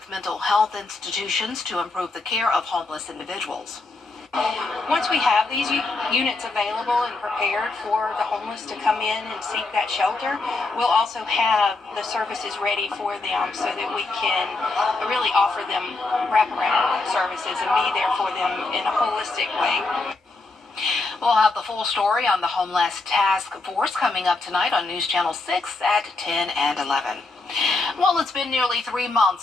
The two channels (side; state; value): right; quieter; 3.4 dB